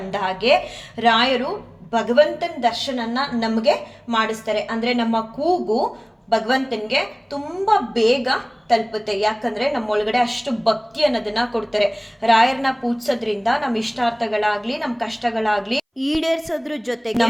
ಹಾಗೆ ರಾಯರು ಭಗವಂತನ ದರ್ಶನನ ನಮಗೆ ಮಾಡಿಸ್ತಾರೆ. ಅಂದರೆ ನಮ್ಮ ಕೂಗು ಭಗವಂತನಿಗೆ ತುಂಬ ಬೇಗ ತಲುಪುತ್ತೆ. ಯಾಕಂದರೆ ನಮ್ಮೊಳಗಡೆ ಅಷ್ಟು ಭಕ್ತಿ ಅನ್ನೋದನ್ನ ಕೊಡ್ತಾರೆ. ರಾಯರನ್ನ ಪೂಜಿಸೋದ್ರಿಂದ ನಮ್ಮ ಇಷ್ಟಾರ್ಥಗಳಾಗ್ಲಿ, ನಮ್ಮ ಕಷ್ಟಗಳಾಗ್ಲಿ ಈಡೇರಿಸೋದ್ರ ಜೊತೆಗೆ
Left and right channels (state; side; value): identical; both; correlation 1.00